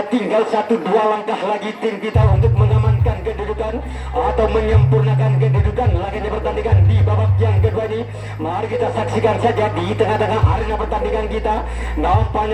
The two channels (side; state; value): both; identical; correlation 1.00